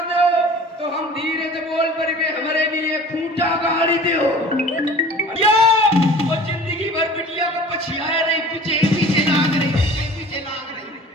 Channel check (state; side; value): normal; both; correlation 0.44